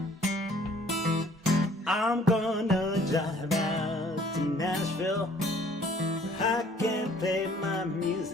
I'm gonna drive out to Nashville, where I can play my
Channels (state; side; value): normal; both; correlation 0.57